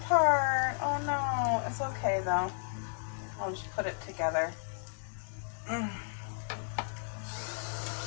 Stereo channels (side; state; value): right; silent; digital silence